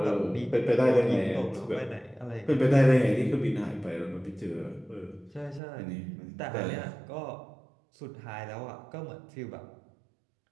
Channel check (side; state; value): left; drops out; at 5.6 s